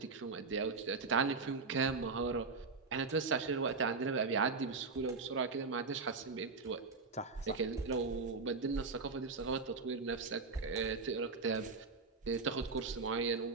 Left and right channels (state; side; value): quieter; left; 4.3 dB